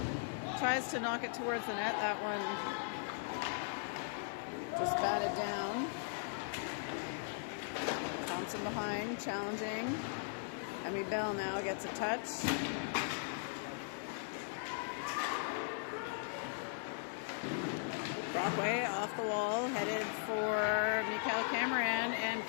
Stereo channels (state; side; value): silent; right; 52 dB below the other